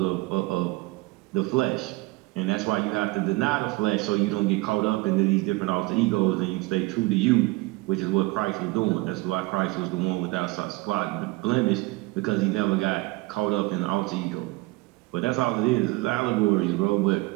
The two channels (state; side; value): quieter; left; 22.8 dB